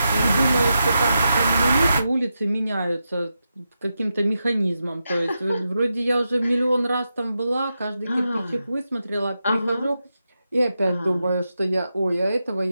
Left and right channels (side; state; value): both; inverted; correlation -0.88